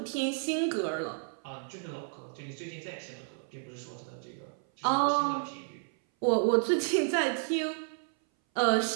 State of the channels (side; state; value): left; silent; 57 dB below the other